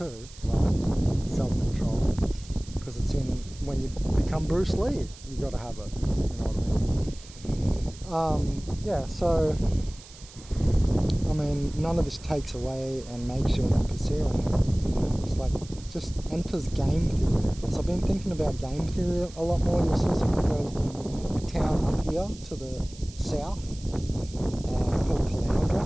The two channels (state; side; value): noise; right; hiss, 19 dB below the sound